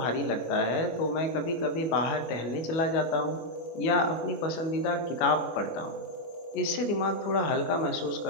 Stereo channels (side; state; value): right; late; 24 ms